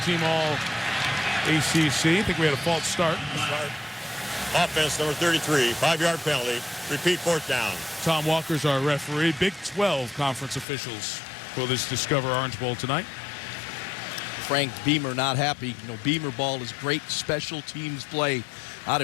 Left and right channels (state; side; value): drops out; right; at 10.7 s